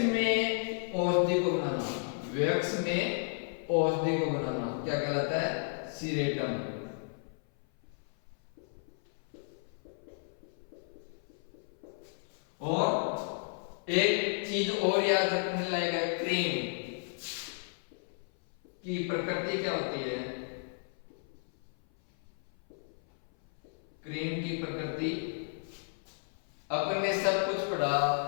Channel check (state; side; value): silent; right; 55 dB below the other